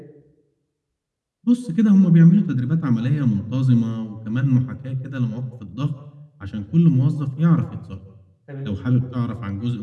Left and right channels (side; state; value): both; identical; correlation 1.00